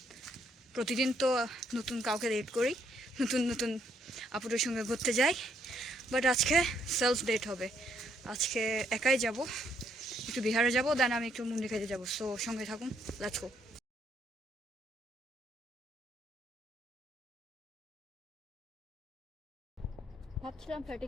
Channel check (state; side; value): normal; both; correlation 0.71